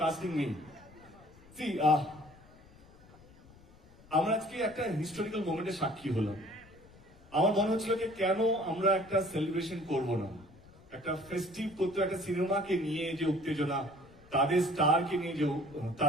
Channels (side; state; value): left; noise; rumble, 24 dB below the sound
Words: casting me. See আমরা আজকে একটা হিস্টোরিক্যাল মোমেন্টের সাক্ষী হলাম। আমার মনে হচ্ছিল যে কেন আমরা একটা সেলিব্রেশন করব না, একটা ফেস্টিভ করতে, একটা সিনেমাকে নিয়ে যে উত্তেজনা, তাদের স্টারকে নিয়ে যে